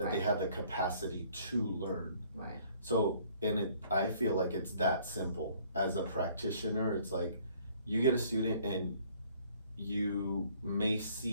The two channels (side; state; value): both; inverted; correlation -0.59